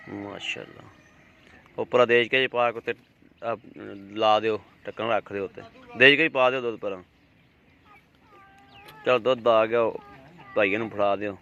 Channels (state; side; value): identical; both; correlation 1.00